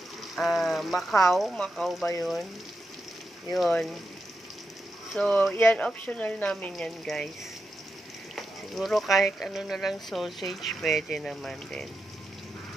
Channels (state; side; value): normal; both; correlation 0.87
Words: Macau ba yun? Yun. So, yan, optional namin yan guys. Siguro kahit ano na lang sausage, pwede naman din.